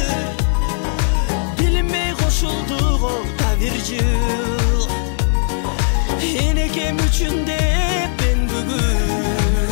билинбей кошулду го да бир жыл. Энекем үчүн деп мен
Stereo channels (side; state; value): right; silent; digital silence